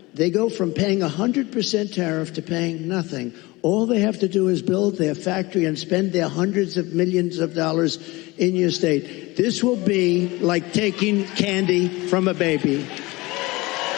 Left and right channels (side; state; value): right; quieter; 22.0 dB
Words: they go from paying 100% tariff to paying nothing. All they have to do is build their factory and spend their hundreds of millions of dollars in your state. This will be like taking candy from a baby.